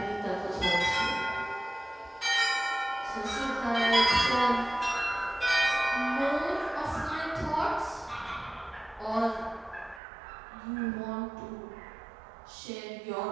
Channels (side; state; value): left; drops out; at 10.0 s